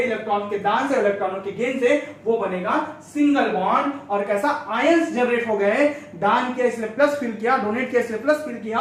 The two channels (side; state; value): both; identical; correlation 1.00